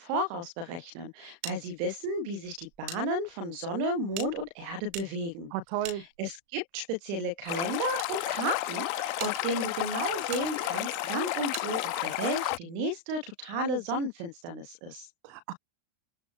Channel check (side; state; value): left; late; 36 ms